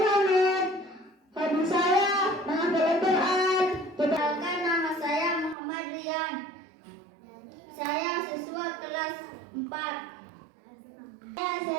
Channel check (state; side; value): drops out; left; at 5.6 s